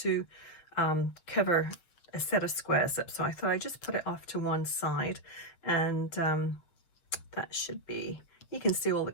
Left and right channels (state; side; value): late; right; 7.0 ms